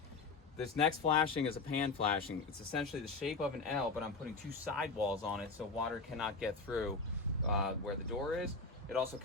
This next flashing is a pan flashing. It's essentially the shape of an L, but I'm putting two sidewalls on it so water cannot get through where the door is. It also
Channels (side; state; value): right; quieter; 4.0 dB